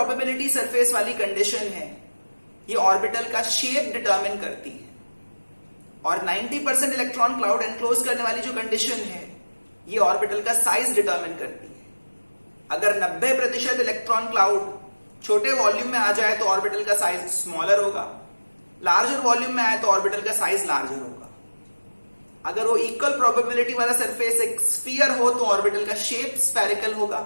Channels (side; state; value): both; inverted; correlation -1.00